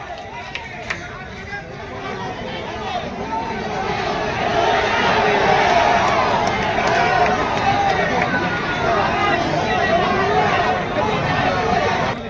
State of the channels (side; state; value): both; identical; correlation 1.00